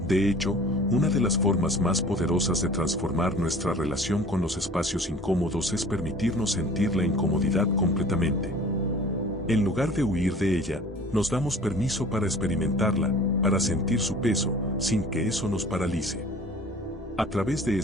De hecho, una de las formas más poderosas de transformar nuestra relación con los espacios incómodos es permitirnos sentir la incomodidad completamente. En lugar de huir de ella, nos damos permiso para experimentarla, para sentir su peso, sin que eso nos paralice. A través de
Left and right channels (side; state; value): both; normal; correlation 0.46